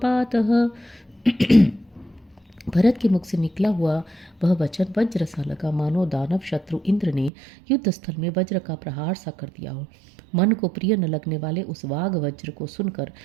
भरत के मुख से निकला हुआ वह वचन वज्र सा लगा, मानो दानव शत्रु इंद्र ने युद्ध स्थल में वज्र का प्रहार सा कर दिया हो। मन को प्रिय न लगने वाले उस वाग वज्र को सुनकर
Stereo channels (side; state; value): left; drops out; at 7.3 s